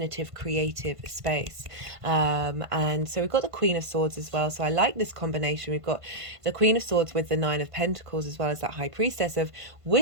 creative space. And so we've got the Queen of Swords as well, so I like this combination. We've got the Queen of Swords with the Nine of Pentacles, as well as that High Priestess of,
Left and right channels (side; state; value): left; late; 1.5 ms